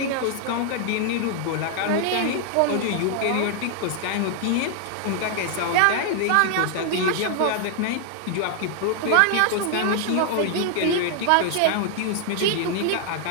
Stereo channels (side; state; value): both; different; correlation 0.00